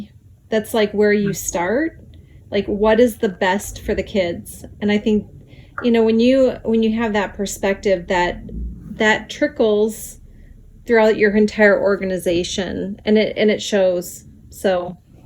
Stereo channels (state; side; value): identical; both; correlation 1.00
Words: That's like where you start. Like, what is the best for the kids? And I think, when you have that perspective, that trickles throughout your entire organization, and it shows. So